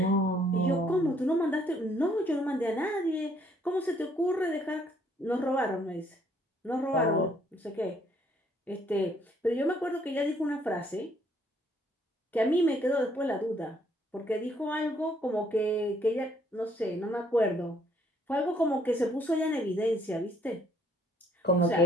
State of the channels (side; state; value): both; normal; correlation 0.66